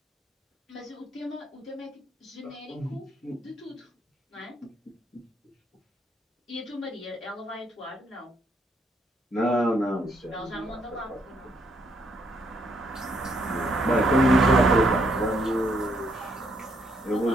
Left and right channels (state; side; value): normal; both; correlation 0.72